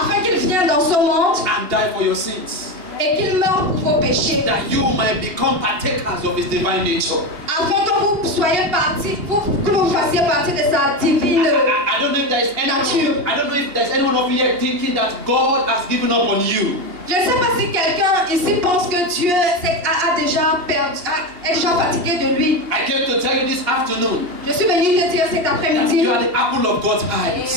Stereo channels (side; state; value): left; late; 2.8 ms